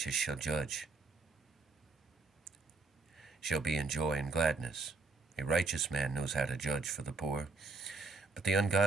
shall judge. shall be in joy and gladness. A righteous man knows how to judge for the poor, but the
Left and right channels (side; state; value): left; quieter; 3.8 dB